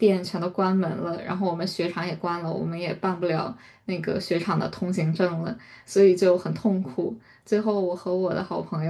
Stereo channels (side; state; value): both; identical; correlation 1.00